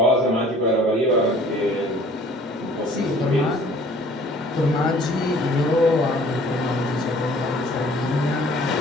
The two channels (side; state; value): both; normal; correlation 0.53